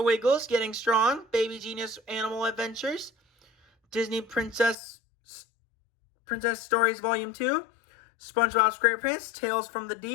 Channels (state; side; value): drops out; right; at 4.8 s